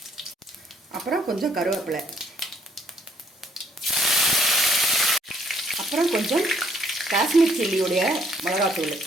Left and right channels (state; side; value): normal; both; correlation 0.65